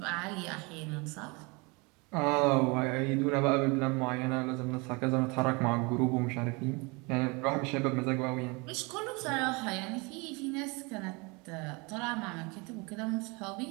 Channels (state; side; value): quieter; left; 28.1 dB